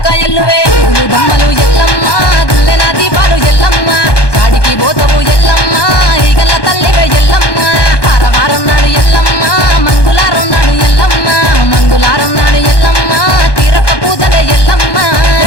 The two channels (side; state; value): right; late; 1.2 ms